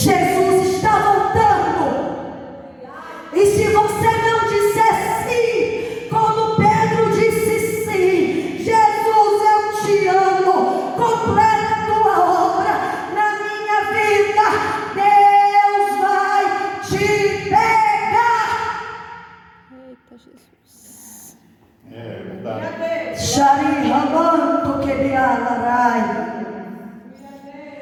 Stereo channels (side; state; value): both; identical; correlation 1.00